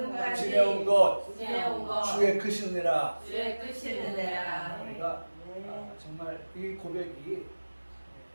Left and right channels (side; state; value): both; inverted; correlation -1.00